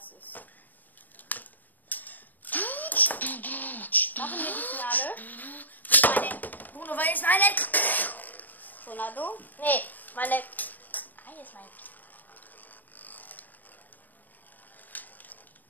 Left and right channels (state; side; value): late; right; 0.086 ms